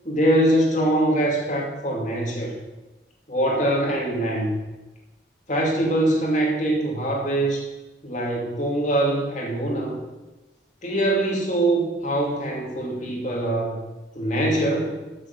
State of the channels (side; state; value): both; normal; correlation 0.51